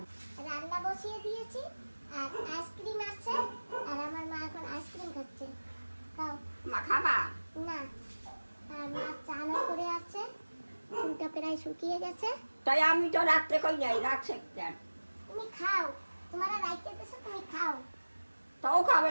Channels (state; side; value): inverted; both; correlation -1.00